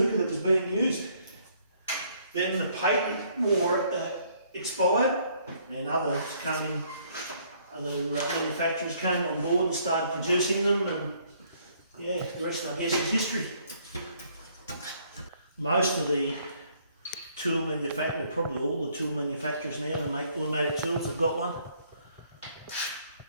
that was being used. Then the patent war expired, and other manufacturers came on board and started producing them, and yeah, the rest I guess is history. Most of the tool manufacturers, probably all the tool manufacturers now that make automatic tools have got one.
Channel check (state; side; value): inverted; both; correlation -0.65